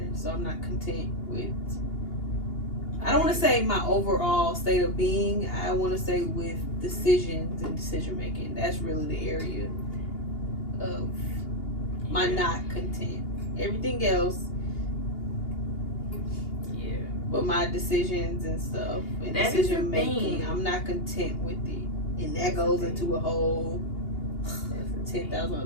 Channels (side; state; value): right; late; 2.8 ms